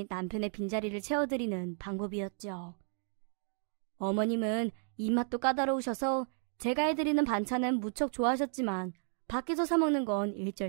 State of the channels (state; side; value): silent; left; 56 dB below the other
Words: 남편의 빈자리를 채워드리는 방법이었죠. 어머님은 입맛도 까다로우셔서 제가 해드리는 반찬은 무척 좋아하셨지만 밖에서 사 먹는 건